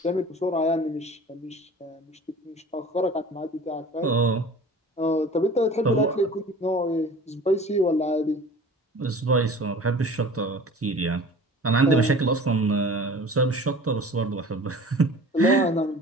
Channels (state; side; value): normal; both; correlation 0.42